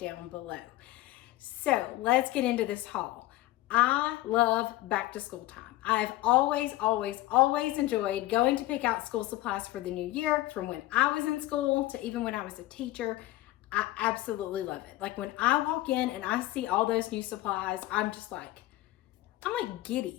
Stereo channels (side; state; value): right; quieter; 17.0 dB